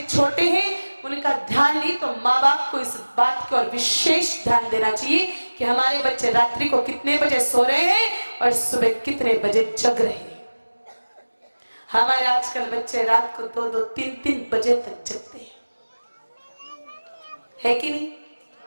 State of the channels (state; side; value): inverted; both; correlation -1.00